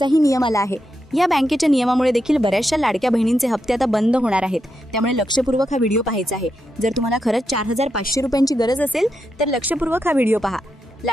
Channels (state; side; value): normal; both; correlation 0.85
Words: नियम आला आहे. या बँकेच्या नियमामुळे देखील बऱ्याचशा लाडक्या बहिणींचे हप्ते आता बंद होणार आहेत. त्यामुळे लक्षपूर्वक हा व्हिडिओ पाहायचा आहे. जर तुम्हाला खरंच 4,500 रुपयांची गरज असेल तर लक्षपूर्वक हा व्हिडिओ पहा.